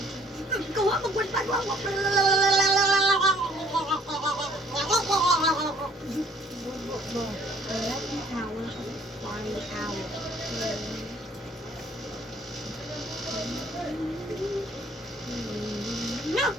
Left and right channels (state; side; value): normal; both; correlation 0.58